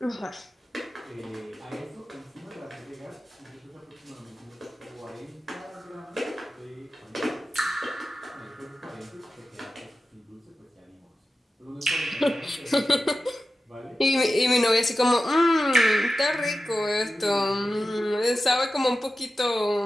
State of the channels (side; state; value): both; normal; correlation 0.94